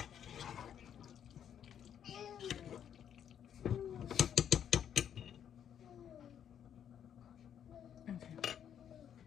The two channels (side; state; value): right; quieter; 9.1 dB